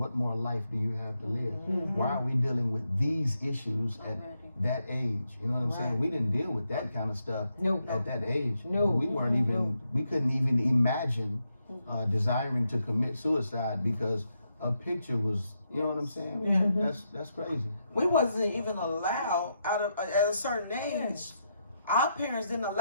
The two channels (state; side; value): inverted; both; correlation -0.81